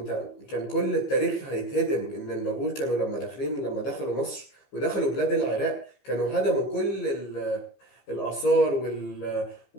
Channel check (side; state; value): right; late; 15 ms